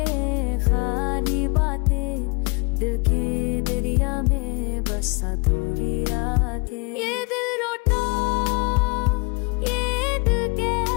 खाली बातें, दिल के दरिया में बस अधूरी रातें। ये दिल रोता ये दिल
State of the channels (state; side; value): quieter; right; 31.3 dB